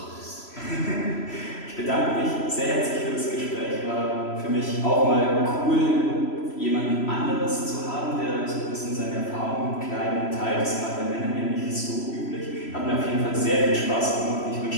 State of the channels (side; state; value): right; late; 3.0 ms